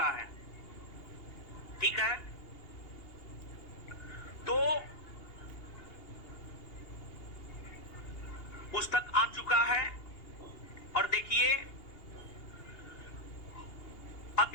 है। ठीक है, तो पुस्तक आ चुका है और देखिए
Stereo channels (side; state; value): right; late; 2.8 ms